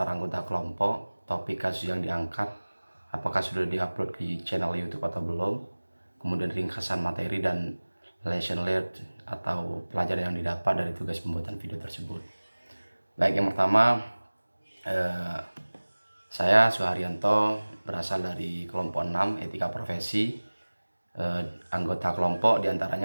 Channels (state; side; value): inverted; both; correlation -1.00